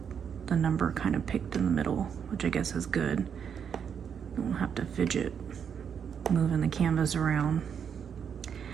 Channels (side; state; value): left; quieter; 7.5 dB